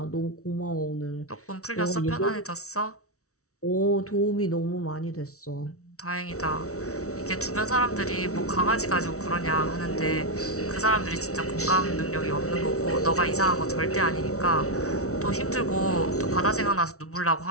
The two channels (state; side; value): late; right; 0.64 ms